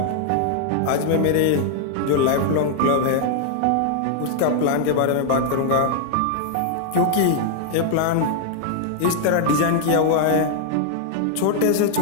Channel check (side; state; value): both; different; correlation -0.01